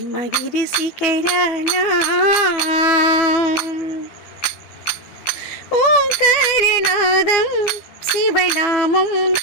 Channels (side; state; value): right; late; 12 ms